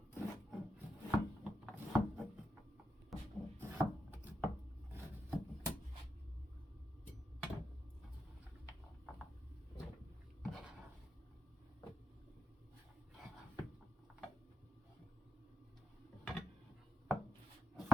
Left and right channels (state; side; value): normal; both; correlation 0.82